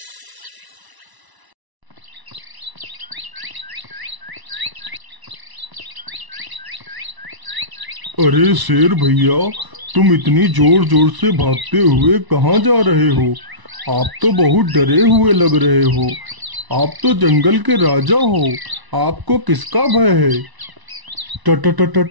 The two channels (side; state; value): left; late; 1.0 ms